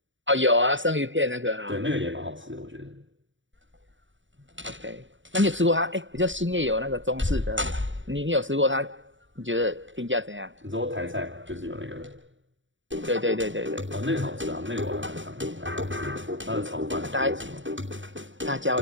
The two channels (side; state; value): left; late; 0.55 ms